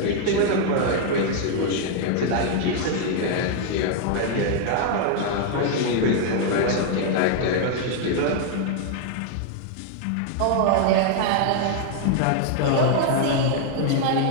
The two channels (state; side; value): different; both; correlation 0.00